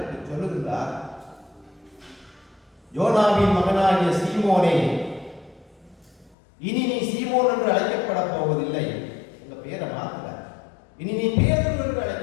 சொல்லுகின்றார், யோனாவின் மகனாகிய சீமோனே, இனி நீ சீமோன் என்று அழைக்கப்பட போவதில்லை, உங்க பேரை மாத்தல, இனி நீ பேதுரு என்று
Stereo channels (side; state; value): right; drops out; at 6.4 s